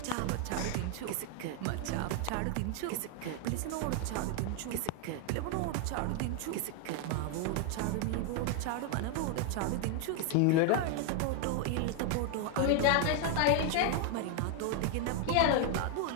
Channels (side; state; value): both; different; correlation 0.00